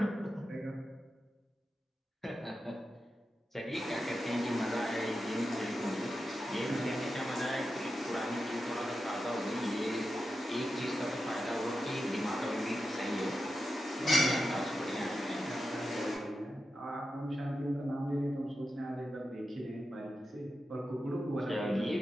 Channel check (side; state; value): both; normal; correlation 0.90